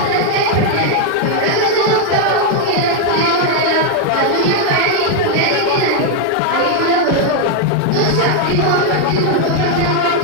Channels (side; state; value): both; different; correlation 0.01